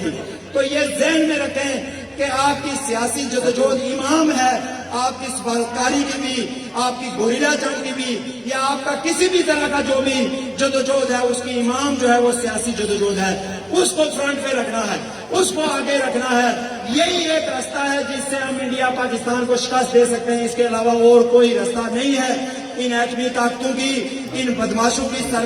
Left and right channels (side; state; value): both; identical; correlation 1.00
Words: تھی. تو یہ ذہن میں رکھیں کہ آپ کی سیاسی جدوجہد امام ہے, آپ کی سفارتکاری کی بھی, آپ کی گوریلا جنگ کی بھی, یا آپ کا کسی بھی طرح کا جو بھی جدوجہد ہے اس کی امام جو ہے وہ سیاسی جدوجہد ہے. اس کو فرنٹ پہ رکھنا ہے, اس کو آگے رکھنا ہے. یہی ایک راستہ ہے جس سے ہم انڈیا پاکستان کو شکست دے سکتے ہیں, اس کے علاوہ اور کوئی راستہ نہیں ہے. ان ایٹمی طاقتوں کی, ان بدماشوں کی